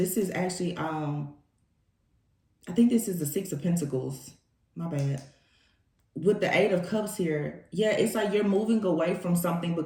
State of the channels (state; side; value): identical; both; correlation 1.00